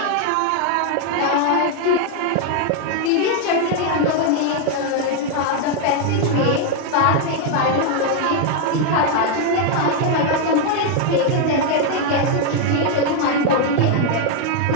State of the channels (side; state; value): both; different; correlation 0.00